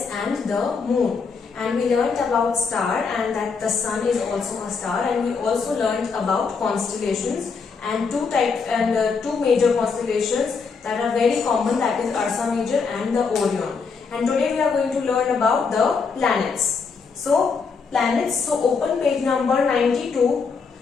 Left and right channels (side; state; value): right; quieter; 5.2 dB